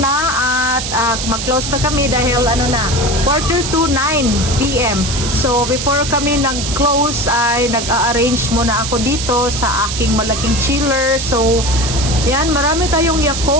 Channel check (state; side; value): noise; right; hiss, 5 dB below the sound